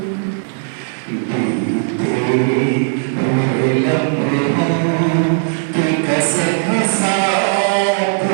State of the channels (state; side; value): silent; left; digital silence